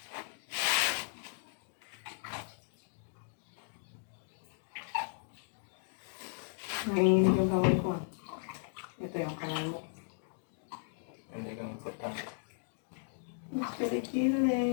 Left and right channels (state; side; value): silent; right; digital silence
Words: Nanginginig yung kamay ko. Ito yung kamay mo. Hindi kang importante.